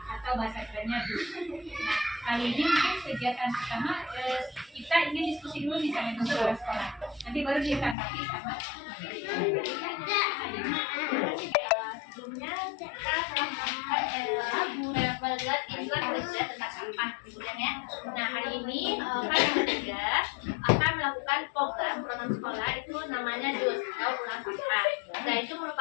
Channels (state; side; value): drops out; right; at 8.0 s